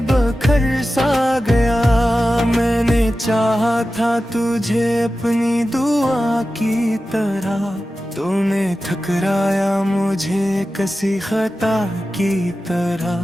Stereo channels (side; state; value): both; normal; correlation 0.94